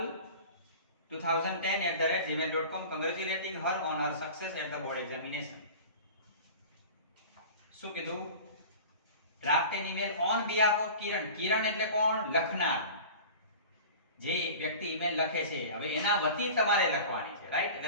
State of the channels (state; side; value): inverted; both; correlation -0.38